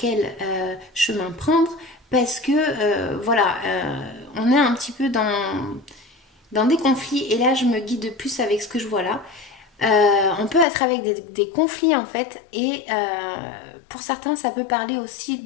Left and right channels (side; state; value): right; drops out; at 10.7 s